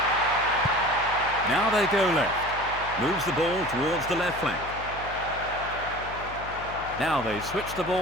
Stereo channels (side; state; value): left; noise; hum, 14 dB below the sound